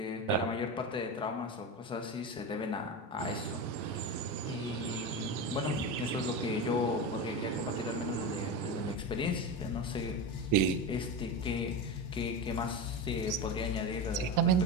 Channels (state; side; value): normal; both; correlation 0.21